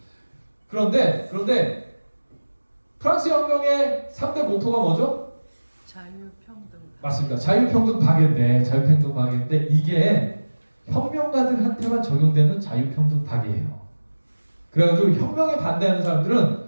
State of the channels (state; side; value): inverted; both; correlation -1.00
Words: 그런데 프랑스 혁명의 3대 모토가 뭐죠? 자유평등. 맞습니다. 자유평등 파괴인데 이게 혁명가들한테만 적용되는 자유평등 파괴예요. 그래가지고 혁명에 반대하는